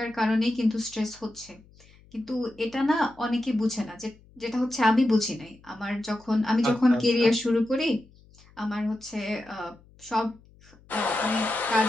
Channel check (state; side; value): noise; left; hum, 27 dB below the sound